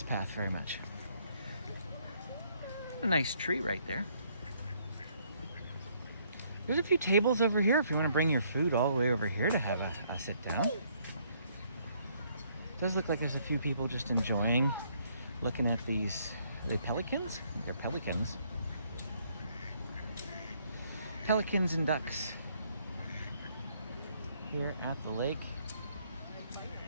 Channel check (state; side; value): inverted; both; correlation -0.67